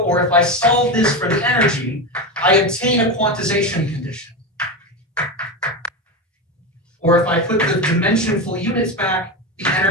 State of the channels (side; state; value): both; normal; correlation 0.18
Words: if I solve this for the energy, I obtain a quantization condition. Or if I put the dimensionful units back, the